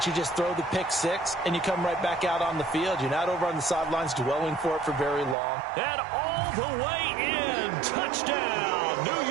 you just throw the pick six and you come right back out on the field. You're not over on the sidelines dwelling for it for very long. And all the way in. Touchdown, New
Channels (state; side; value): drops out; left; at 5.4 s